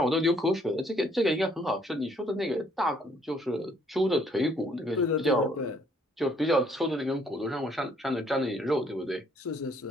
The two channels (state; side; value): normal; both; correlation 0.65